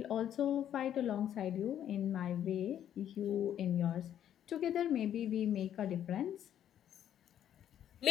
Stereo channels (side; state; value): right; quieter; 10.4 dB